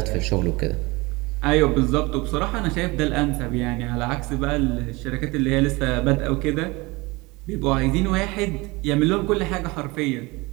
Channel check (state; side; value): quieter; left; 23.8 dB